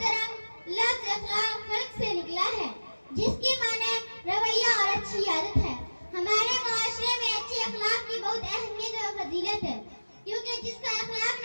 लफ्ज़ अखलाक खल्क से निकला है, जिसकी माने रवैया और अच्छी आदत है। हमारे मुआशरे में अच्छे अखलाक की बहुत अहमियत और फजीलत है, क्योंकि जिसका अखलाक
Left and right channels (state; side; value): inverted; both; correlation -1.00